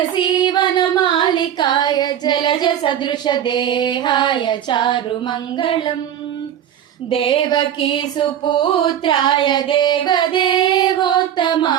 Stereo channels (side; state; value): left; quieter; 10.2 dB